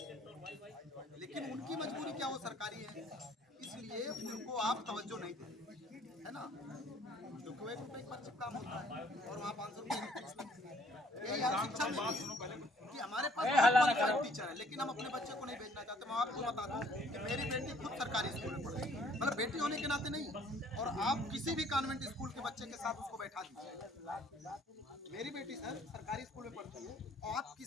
लेकिन उनकी मजबूरी क्या, वो सरकारी है, इसलिए उनको आप तवज्जो नहीं देते, है ना। क्योंकि वो 1 रुपये पर काम होता है और वहाँ 500 रुपये। यही यार शिक्षा में कि हमारे पास बहुत क्वालिफाइड टीचर है, लेकिन हम अपने बच्चे को नहीं भेजना चाहते। मैं आपको बता दूं कि मेरी बेटी खुद सरकारी स्कूल में पढ़ती है, मतलब बेटी होने के नाते नहीं, और आप किसी भी कॉन्वेंट स्कूल के बच्चे के साथ उसको बैठा दीजिए। मेरी बेटी सर सरकारी स्कूल में पढ़ती है, और आप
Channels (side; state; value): both; normal; correlation 0.61